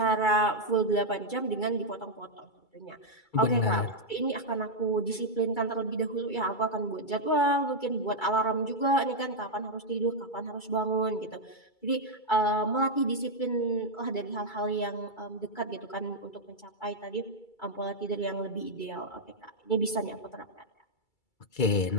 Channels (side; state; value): right; late; 2.3 ms